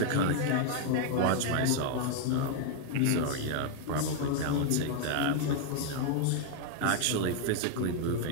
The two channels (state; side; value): different; both; correlation 0.00